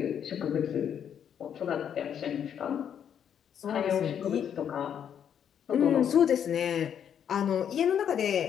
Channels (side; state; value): right; quieter; 8.7 dB